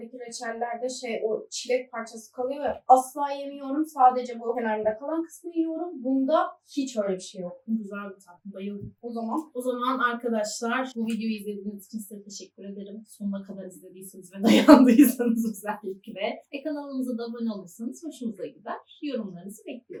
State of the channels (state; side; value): identical; both; correlation 1.00